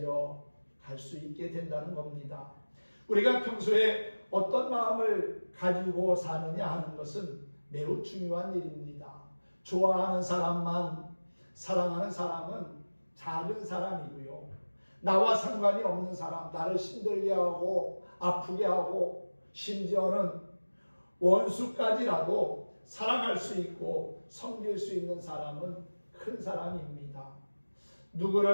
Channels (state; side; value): inverted; both; correlation -1.00